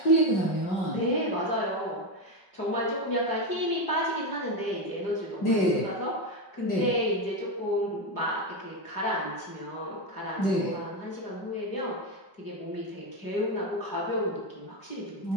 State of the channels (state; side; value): late; right; 5.3 ms